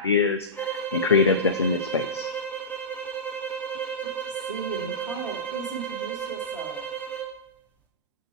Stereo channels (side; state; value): both; normal; correlation -0.15